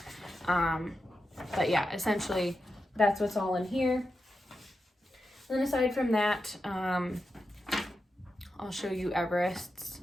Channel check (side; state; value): both; normal; correlation 0.89